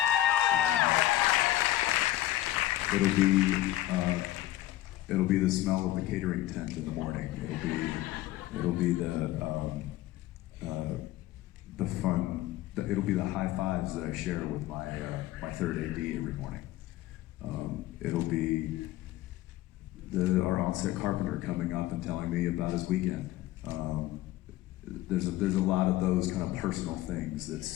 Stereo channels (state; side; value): quieter; right; 14.9 dB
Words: It'll be the smell of the catering tent in the morning. It'll be the fun. It'll be the high fives that I share with my third AD every morning. It'll be our on-set carpenter coming up and telling me about his weekend. There's a lot of those kind of personal things.